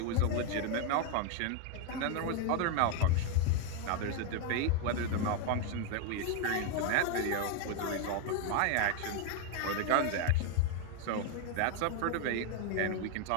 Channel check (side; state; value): both; different; correlation 0.01